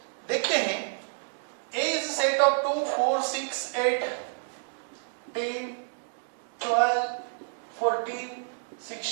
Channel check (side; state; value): left; silent; digital silence